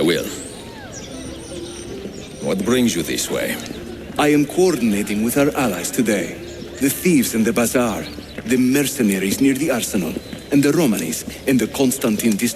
will. What brings you this way? I am coordinating with our allies today. The thieves in the bazaar, the mercenaries near the arsenal, and the Romanis in the Constantine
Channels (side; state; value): both; identical; correlation 1.00